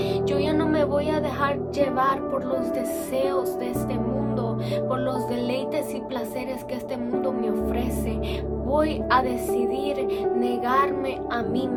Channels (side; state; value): both; identical; correlation 1.00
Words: Yo ya no me voy a dejar llevar por los deseos de este mundo, por los deleites y placeres que este mundo me ofrece. Voy a decidir negarme a mí